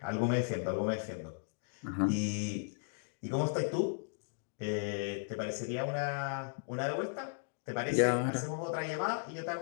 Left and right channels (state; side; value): silent; right; digital silence